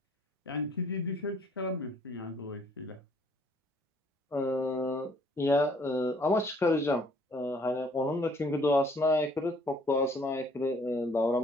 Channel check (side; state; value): both; normal; correlation 0.61